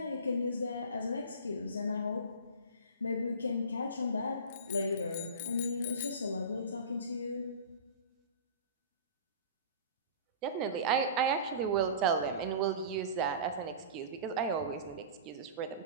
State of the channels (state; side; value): inverted; both; correlation -0.34